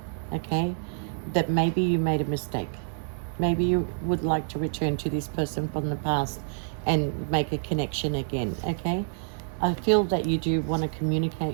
okay? That maybe you made a mistake. Maybe you would like to return to this person from the past and make a connection again, okay? I feel that you do want to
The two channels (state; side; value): silent; left; digital silence